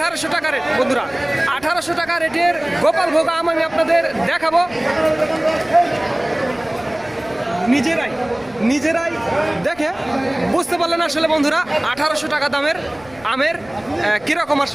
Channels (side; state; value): left; noise; rumble, 25 dB below the sound